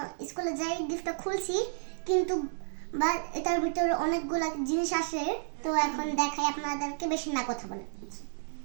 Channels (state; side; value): silent; left; digital silence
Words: স্কুলে যাই গিফটটা খুলছি, কিন্তু বা এটার ভিতরে অনেকগুলো জিনিস আসে। তো এখন দেখাই আপনাদেরকে, বেশি না কথা বলে।